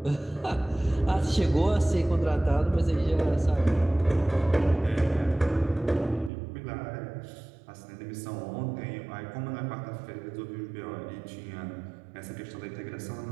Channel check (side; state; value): left; drops out; at 6.3 s